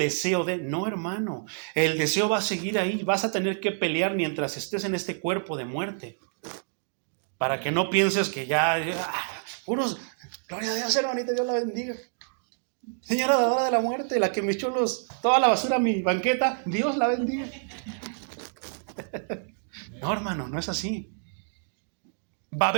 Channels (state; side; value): silent; left; digital silence